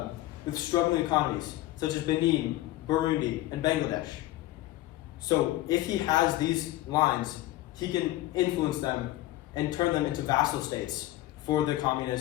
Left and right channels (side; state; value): right; quieter; 16.3 dB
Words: struggling economies, such as Benin, Burundi, and Bangladesh. So if he has these lines, he can influence them and turn them into vassal states for the